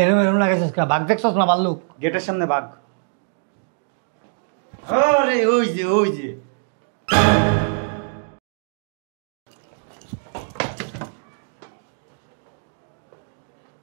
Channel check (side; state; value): left; silent; digital silence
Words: এরম লাগেছিস কা? বাঘ দেখছস না ভাল্লুক? গেটের সামনে বাঘ। আরে ওই যে ওই যে